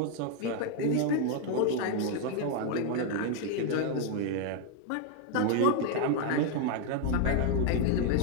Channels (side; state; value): both; different; correlation 0.00